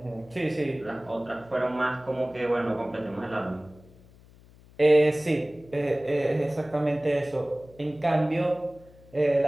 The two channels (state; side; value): noise; left; hum, 24 dB below the sound